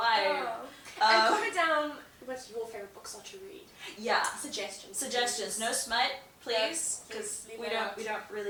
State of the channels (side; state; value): both; identical; correlation 1.00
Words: Oh. And comment down what your favorite books are to read. Yeah. Suggestions. No smut, please, because we don't